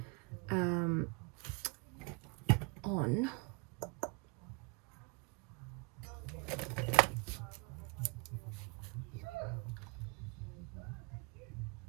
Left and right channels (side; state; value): left; quieter; 30.7 dB